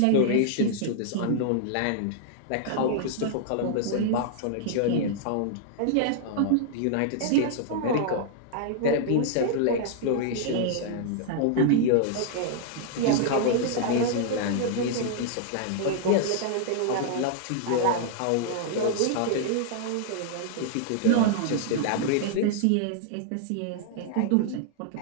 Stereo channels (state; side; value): different; both; correlation -0.01